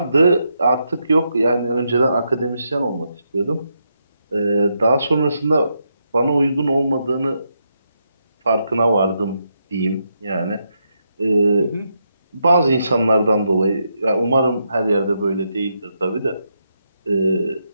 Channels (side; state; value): both; inverted; correlation -0.81